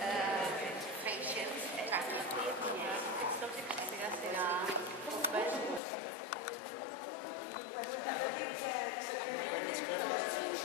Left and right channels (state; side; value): drops out; right; at 5.8 s